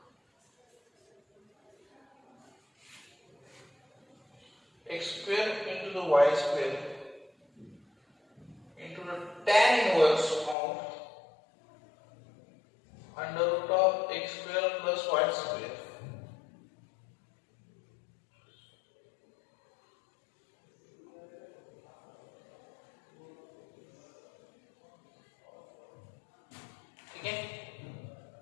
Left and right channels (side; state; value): right; drops out; at 10.6 s